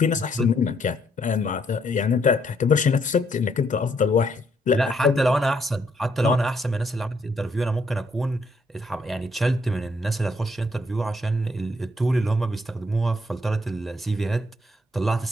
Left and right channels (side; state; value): both; normal; correlation 0.71